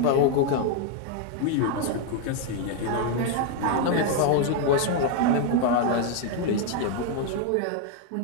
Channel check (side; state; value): both; different; correlation 0.00